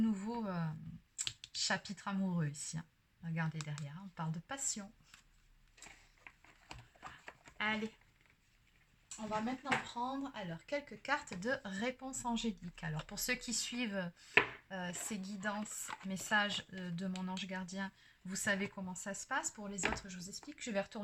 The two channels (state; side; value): identical; both; correlation 1.00